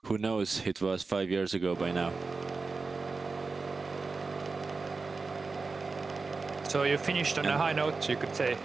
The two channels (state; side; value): quieter; left; 4.2 dB